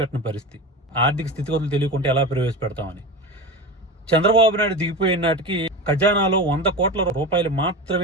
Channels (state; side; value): normal; both; correlation 0.26